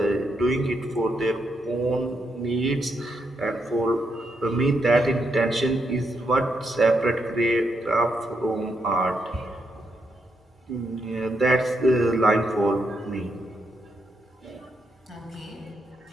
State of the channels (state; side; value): normal; both; correlation 0.80